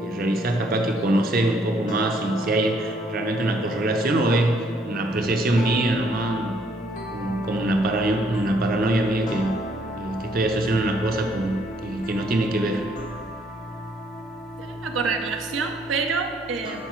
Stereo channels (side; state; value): both; normal; correlation 0.67